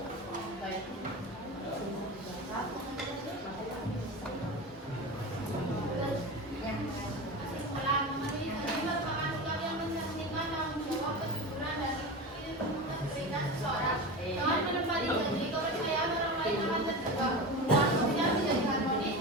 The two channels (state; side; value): normal; both; correlation 0.26